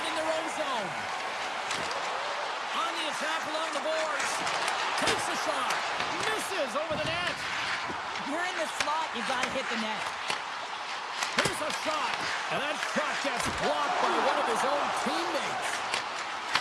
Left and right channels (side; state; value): both; identical; correlation 1.00